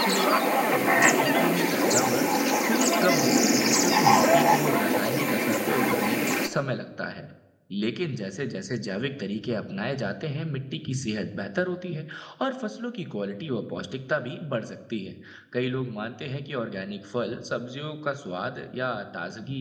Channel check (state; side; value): identical; both; correlation 1.00